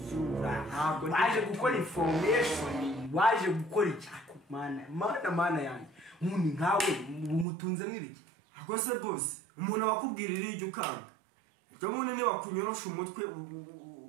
waje gukora information waje gukora icyako mana yanjye umuntu nkawe umutunze mwibiki ako se bose umuntu wakubwirira iryo ukanga ejo bundi ni wakunyorosha umutwe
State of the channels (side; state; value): left; drops out; at 7.5 s